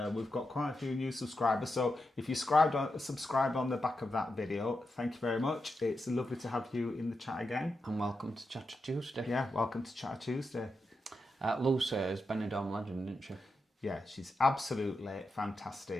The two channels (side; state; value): both; normal; correlation 0.87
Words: we've got quite a few new subscribers. So if you subscribed on the back of that video, thank you very much. It's lovely to have you in the chat again. And welcome to Chatter Tuesday. Yeah, welcome to Chatter Tuesday. Lucy is Benidorm legend, isn't she? Yeah, she's absolutely